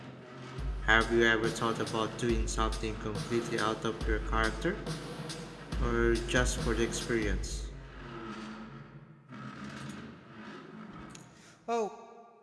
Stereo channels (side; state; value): both; identical; correlation 1.00